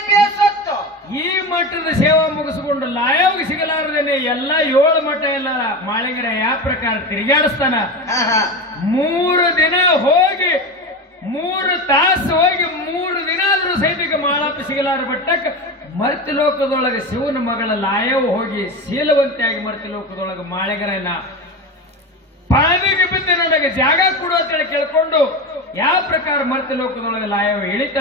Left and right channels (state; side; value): normal; both; correlation 0.23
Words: ಈ ಮಠದ ಸೇವಾ ಮುಗಿಸಿಕೊಂಡು ಲಾಯವ್ಗೆ ಸಿಗಲಾರದೇನೆ ಎಲ್ಲ 7 ಮಠ ಎಲ್ಲ ಮಾಳಿಗರ ಯಾವ ಪ್ರಕಾರ ತಿರುಗಾಡಿಸ್ತಾನ. 3 ದಿನ ಹೋಗಿ 3 ತಾಸು ಹೋಗಿ 3 ದಿನ ಆದ್ರೂ ಸೈನಿಕ ಮಾಳಪ್ಪ ಸಿಗಲಾರ ಬಟ್ಟಕ್ಕೆ ಮರ್ತಿ ಲೋಕದೊಳಗೆ ಶಿವನ ಮಗಳ ಲಾಯವ್ ಹೋಗಿ ಶೀಲವಂತಿಯಾಗಿ ಮರ್ತಿ ಲೋಕದೊಳಗೆ ಮಾಳಿಗರನ್ನ ಪಾದಿಗೆ ಬಿದ್ದು ನನಗೆ ಜಾಗ ಕೊಡು ಅಂತೇಳಿ ಕೇಳ್ಕೊಂಡು ಯಾವ ಪ್ರಕಾರ ಮರ್ತಿ ಲೋಕದೊಳಗೆ ಲಾಯವ